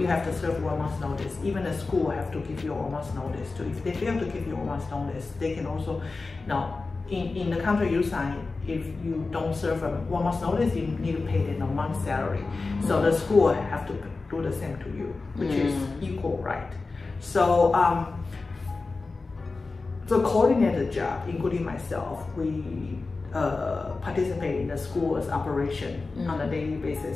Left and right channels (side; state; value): right; quieter; 3.8 dB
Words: have to serve 1 month notice. Even the school have to give you a 1 month notice too. If they fail to give you a 1 month notice, they can also, now in the contract you sign, if you don't serve a 1 month notice, you need to pay them a month's salary. So the school have to do the same to you, which is equal right. So the coordinator job, including myself, we participate in the school's operation on a daily